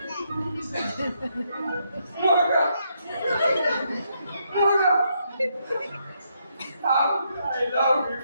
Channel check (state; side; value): inverted; both; correlation -0.77